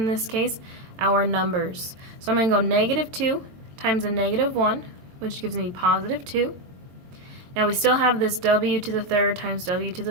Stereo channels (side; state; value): left; late; 22 ms